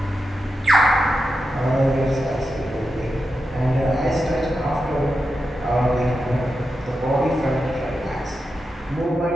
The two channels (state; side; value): normal; both; correlation 0.89